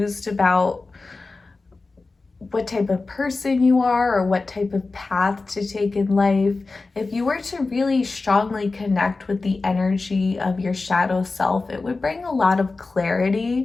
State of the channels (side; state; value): right; quieter; 3.7 dB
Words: about what type of person you are or what type of path to take in life, if you were to really strongly connect with the energy of your shadow self, it would bring a lot of